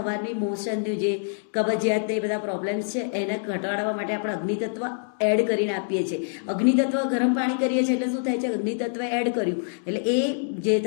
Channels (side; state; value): right; silent; 61 dB below the other